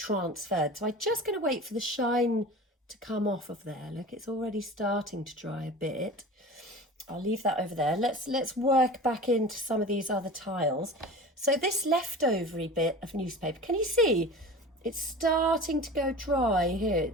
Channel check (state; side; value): normal; both; correlation 0.36